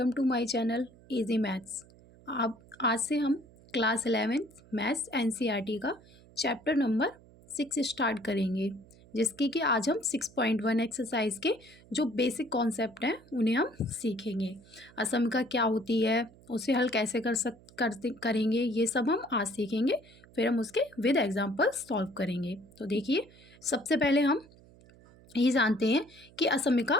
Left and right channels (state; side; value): noise; right; hum, 25 dB below the sound